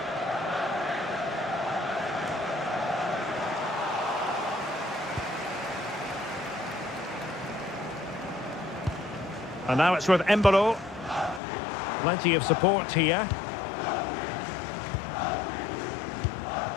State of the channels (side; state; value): right; drops out; at 11.4 s